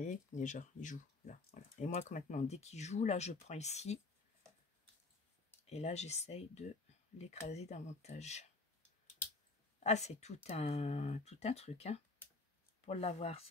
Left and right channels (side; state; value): right; quieter; 3.5 dB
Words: déjà, il joue là. Voilà. Et moi, maintenant, dès qu'il joue, là, je prends ici. Et là, j'essaye de l'écraser davantage. Ah, c'est tout un truc, hein, pour l'avoir,